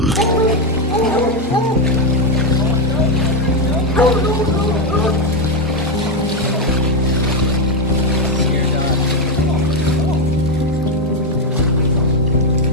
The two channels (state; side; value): normal; both; correlation 0.06